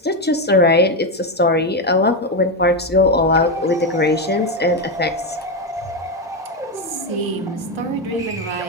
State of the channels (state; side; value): normal; both; correlation 0.09